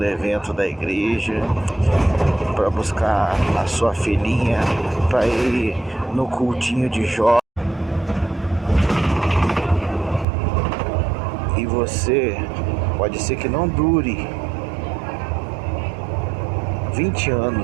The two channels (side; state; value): left; drops out; at 10.2 s